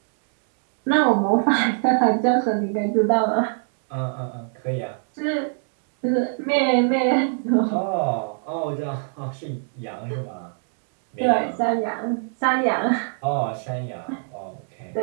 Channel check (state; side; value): silent; left; 62 dB below the other